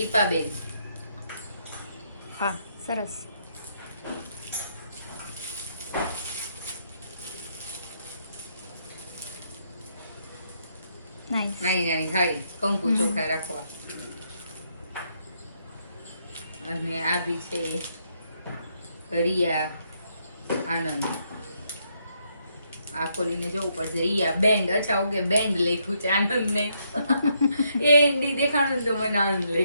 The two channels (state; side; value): inverted; both; correlation -0.75